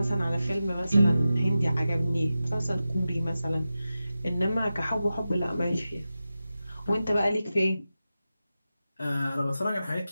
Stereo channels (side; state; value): both; inverted; correlation -0.93